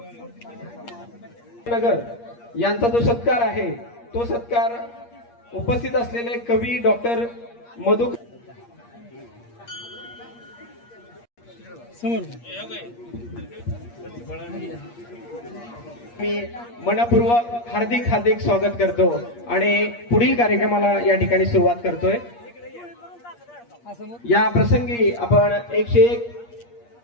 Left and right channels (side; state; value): right; late; 8.5 ms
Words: नगर यांचा जो सत्कार आहे तो सत्कार उपस्थित असलेले कवी डॉक्टर मधु मी मनपूर्वक हार्दिक स्वागत करतो आणि पुढील कार्यक्रमाला या ठिकाणी सुरुवात करतोय. या प्रसंगी आपण 101